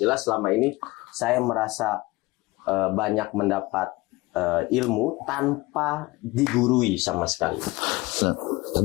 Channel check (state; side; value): quieter; right; 21.8 dB